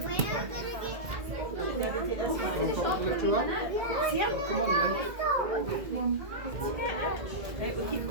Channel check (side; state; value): left; late; 2.0 ms